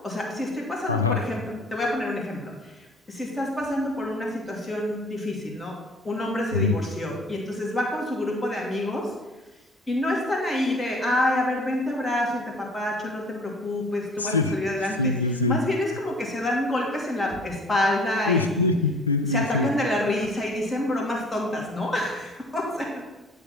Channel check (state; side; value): normal; both; correlation 0.49